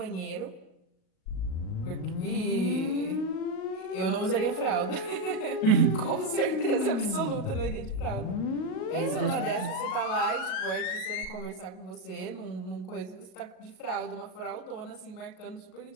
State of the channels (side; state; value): right; late; 37 ms